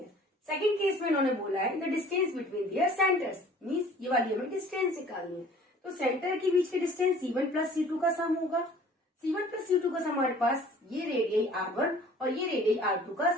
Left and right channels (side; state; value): both; normal; correlation 0.50